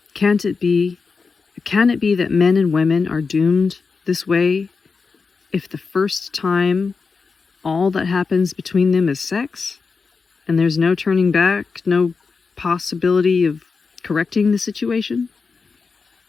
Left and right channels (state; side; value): quieter; right; 4.8 dB